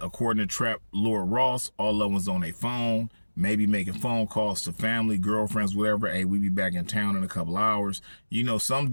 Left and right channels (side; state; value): both; inverted; correlation -1.00